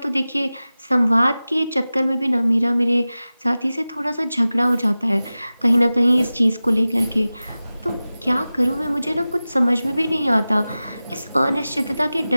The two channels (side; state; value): both; inverted; correlation -0.96